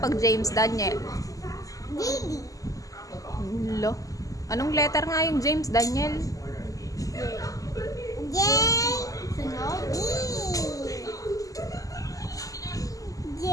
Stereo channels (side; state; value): right; late; 0.17 ms